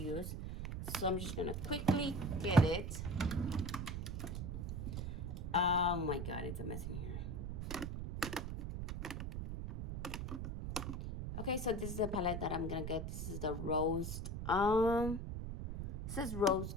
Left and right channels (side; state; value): right; noise; rumble, 4 dB below the sound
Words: So I'm just gonna quickly get it. Oh my god, it's a mess in here. Okay, so this is the palette that I'm gonna get. This is the rose. It says rose